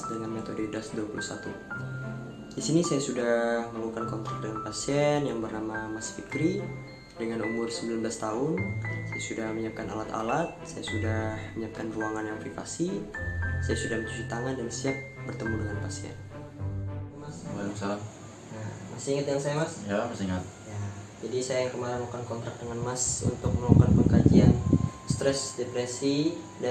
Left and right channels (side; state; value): both; identical; correlation 1.00